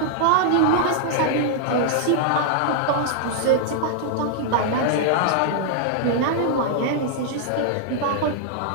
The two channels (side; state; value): both; different; correlation -0.01